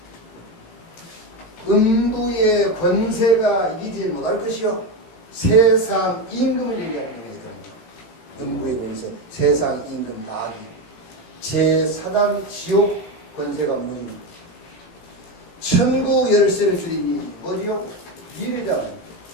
음부의 권세가 이기지 못할 것이요. 세상 임금을 얘기하는 거예요. 음부의 권세, 세상 임금 마귀. 제4단 지옥 권세가 무너집니다. 천국 열쇠를 주리니 뭐지요? 비례잖아요.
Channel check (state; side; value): late; right; 18 ms